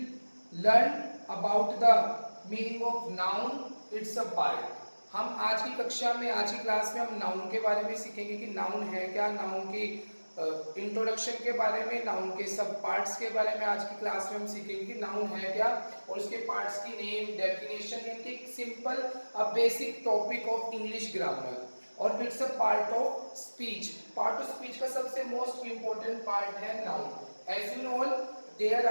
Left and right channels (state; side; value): inverted; both; correlation -1.00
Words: learn about the meaning of noun. It's a part. हम आज की कक्षा में, आज की class में हम noun के बारे में सीखेंगे कि नाउन है क्या, नाउन की इंट्रोडक्शन के बारे में, नाउन के सब पार्ट्स के बारे में आज की क्लास में हम सीखेंगे कि नाउन है क्या और उसके पार्ट्स की नेम, डेफिनेशन, यानी simple basic topic of English grammar. और it's a part of speech. Part of speech का सबसे मोस्ट इंपॉर्टेंट पार्ट है noun. As you know there